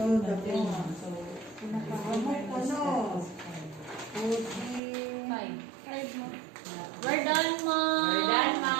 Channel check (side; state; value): left; drops out; at 4.8 s